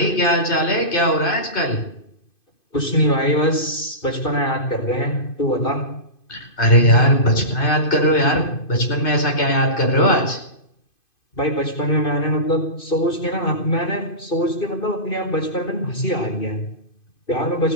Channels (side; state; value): right; late; 2.5 ms